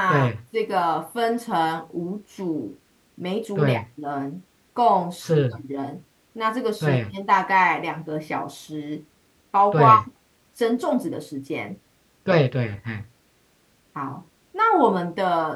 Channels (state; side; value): identical; both; correlation 1.00